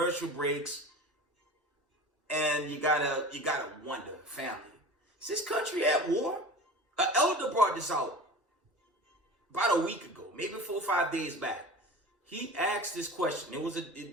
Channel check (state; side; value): normal; both; correlation 0.36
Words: breaks, and you gotta wonder, family, is this country at war? An elder brought this out about a week ago, maybe 4 or 5 days back. He asked this question. It was